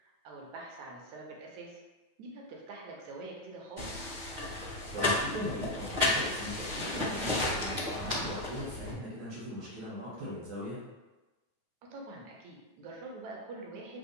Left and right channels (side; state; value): left; late; 9.3 ms